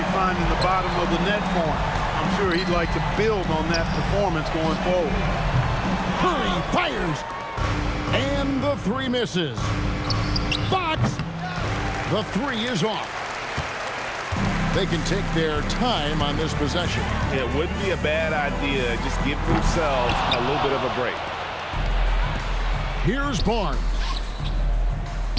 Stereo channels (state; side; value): identical; both; correlation 1.00